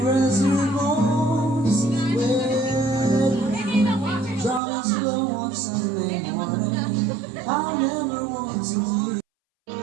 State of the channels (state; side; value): drops out; left; at 4.6 s